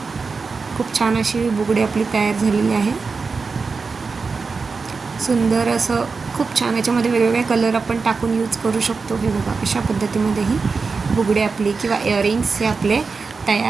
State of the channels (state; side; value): quieter; left; 4.6 dB